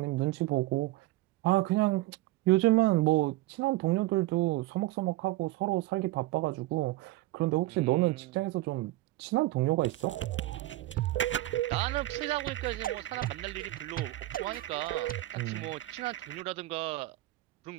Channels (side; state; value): left; quieter; 17.9 dB